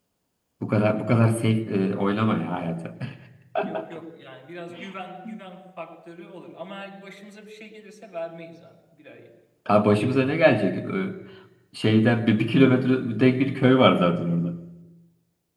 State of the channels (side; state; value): both; identical; correlation 1.00